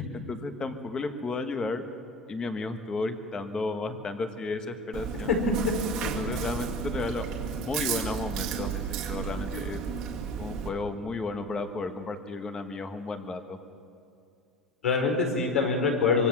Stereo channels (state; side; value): normal; both; correlation 0.33